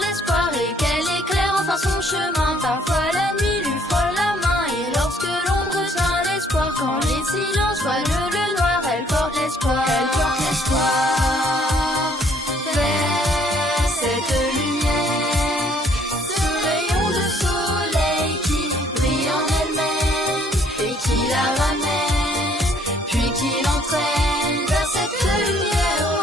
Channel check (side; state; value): both; normal; correlation 0.63